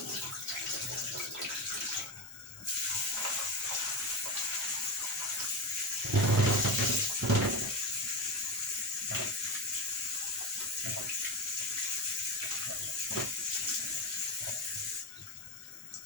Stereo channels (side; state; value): both; normal; correlation 0.17